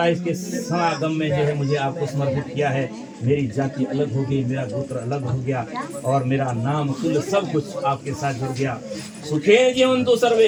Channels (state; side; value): identical; both; correlation 1.00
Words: है, इसके समागम में जो है मुझे आपको समर्पित किया है। मेरी जाति अलग हो गई, मेरा गोत्र अलग हो गया और मेरा नाम कुल सब कुछ आपके साथ जुड़ गया। सुखे जीवन तो सर्वे,